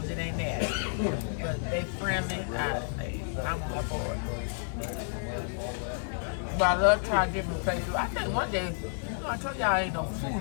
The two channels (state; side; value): silent; right; digital silence